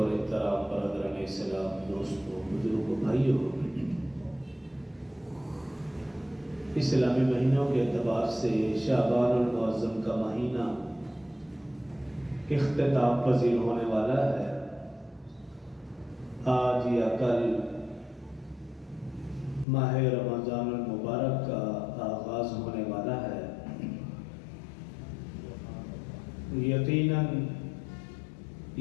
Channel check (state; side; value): drops out; right; at 19.7 s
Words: احترام برادران اسلام، دوستوں، بزرگوں، بھائیوں، اسلامی مہینوں کے اعتبار سے شعبان المعظم کا مہینہ اختتام پذیر ہونے والا ہے۔ آج یا کل ماہ رمضان المبارک کا آغاز ہونے والا ہے۔ یقیناً